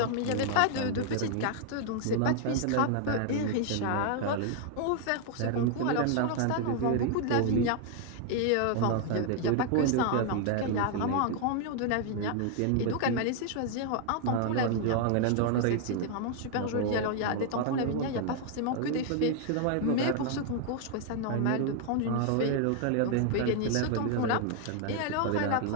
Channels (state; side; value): different; both; correlation 0.00